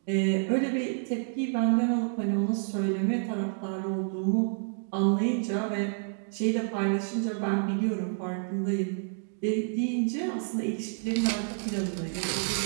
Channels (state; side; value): silent; left; digital silence